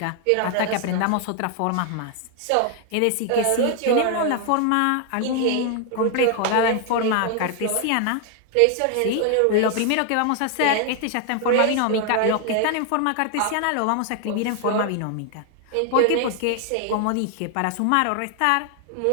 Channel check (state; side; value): different; both; correlation 0.00